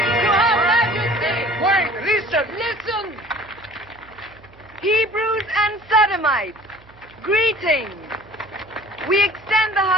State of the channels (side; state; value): right; noise; hum, 26 dB below the sound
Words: Listen! Hebrews and Sodomites, greetings. We extend the